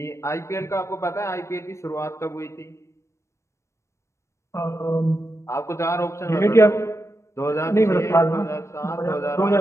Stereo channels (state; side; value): late; right; 0.14 ms